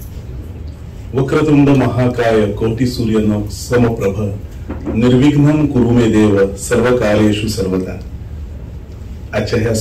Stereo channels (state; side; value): identical; both; correlation 1.00